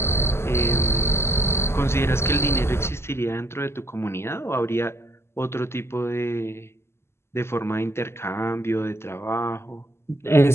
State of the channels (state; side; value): late; right; 0.12 ms